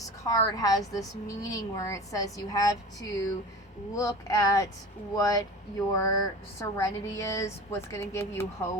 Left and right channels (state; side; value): normal; both; correlation 0.35